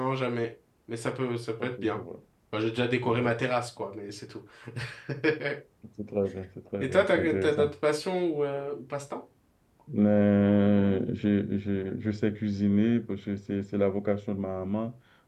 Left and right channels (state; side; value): identical; both; correlation 1.00